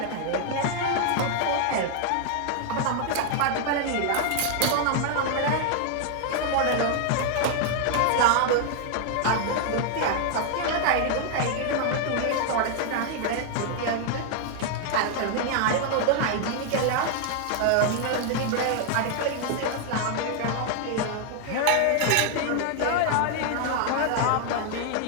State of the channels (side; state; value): both; different; correlation 0.00